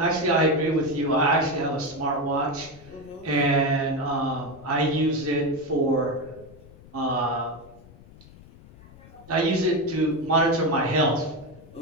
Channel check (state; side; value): noise; left; rumble, 22 dB below the sound